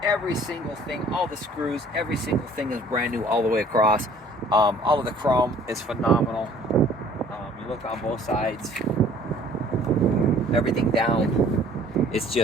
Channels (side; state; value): both; normal; correlation 0.54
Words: every single thing, all the screws, every single thing is brand new all the way across. All of the chrome is phenomenal. You look on both sides, everything down. It's